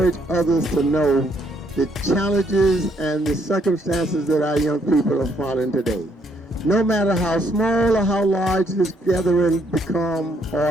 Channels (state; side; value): normal; both; correlation 0.70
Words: others to know the challenges and the circumstances that our young people are following today. No matter how small or how large this gathering become